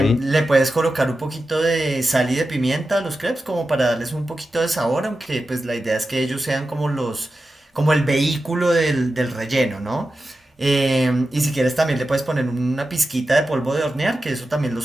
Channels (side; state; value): both; normal; correlation 0.92